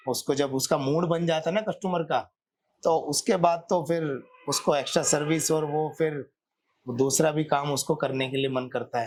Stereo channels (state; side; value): identical; both; correlation 1.00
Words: उसको जब उसका मूड बन जाता है ना कस्टमर का, तो उसके बाद तो फिर उसको एक्स्ट्रा सर्विस और वो फिर दूसरा भी काम उसको करने के लिए मन करता